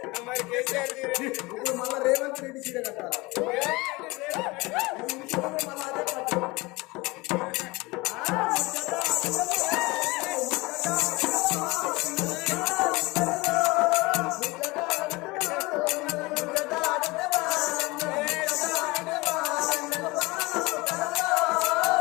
ఇప్పుడు మళ్ళా రేవంత్ రెడ్డి చీర కట్టాలి.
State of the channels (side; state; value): right; quieter; 23.2 dB